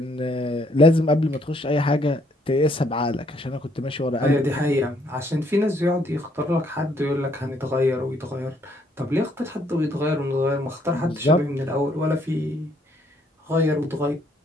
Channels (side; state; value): both; normal; correlation 0.68